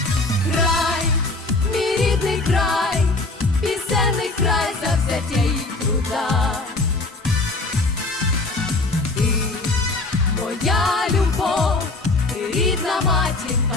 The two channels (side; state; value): right; quieter; 3.2 dB